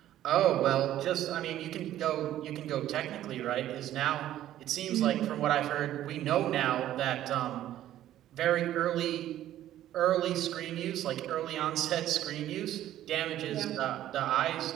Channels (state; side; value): quieter; left; 12.7 dB